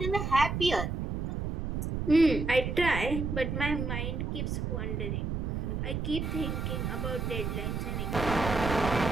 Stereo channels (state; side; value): noise; right; rumble, 2 dB below the sound